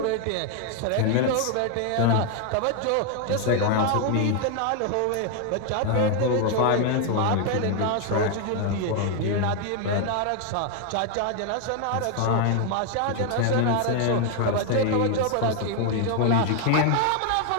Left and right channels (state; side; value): different; both; correlation 0.01